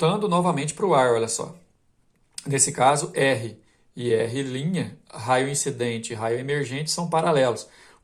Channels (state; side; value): identical; both; correlation 1.00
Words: novamente para o ar, olha só. Nesse caso, R e R', raio incidente e raio emergente, são paralelos.